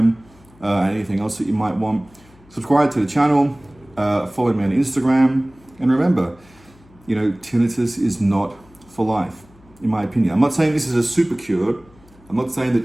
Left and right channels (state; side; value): noise; left; hum, 27 dB below the sound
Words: and anything else that you might want. Subscribe to the channel, follow me on Instagram, and remember, tinnitus is not for life, in my opinion. I'm not saying this is a super cure. I'm not saying that